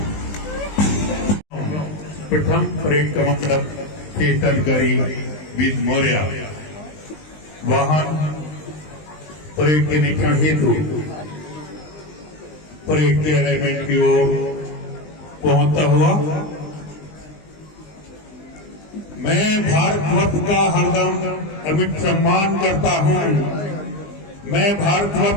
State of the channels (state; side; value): late; right; 20 ms